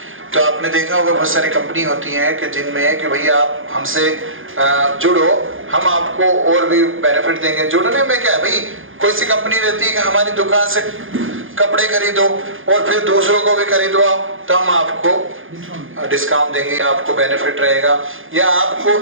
तो आपने देखा होगा बहुत सारी कंपनी होती हैं कि जिनमें कि भाई आप हमसे जुड़ो, हम आपको और भी बेनिफिट देंगे। जुड़ने में क्या है भाई, कोई सी कंपनी रहती है कि हमारी दुकान से कपड़े खरीदो और फिर दूसरों को भी खरीदो आप, तो हम आपको डिस्काउंट देंगे, आपको बेनिफिट रहेगा, या आपको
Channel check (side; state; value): left; late; 0.59 ms